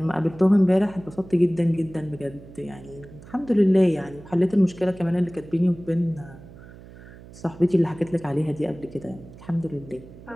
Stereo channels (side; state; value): right; noise; hum, 19 dB below the sound